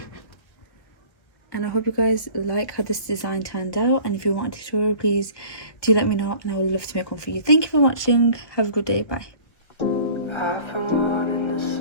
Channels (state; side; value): late; right; 1.6 ms